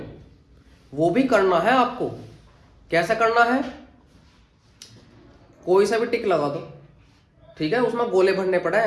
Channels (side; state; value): both; identical; correlation 1.00